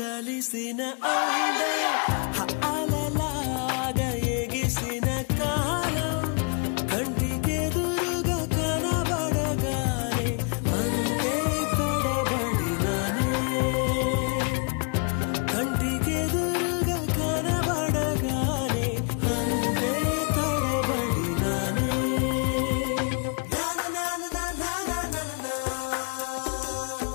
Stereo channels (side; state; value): right; quieter; 37.3 dB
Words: అలలాగా ఎగిసిన కాలం కంటికెదురుగా కనబడగానే అంతే తడబడినానే కంటికెదురుగా కనబడగానే అంతే తడబడినానే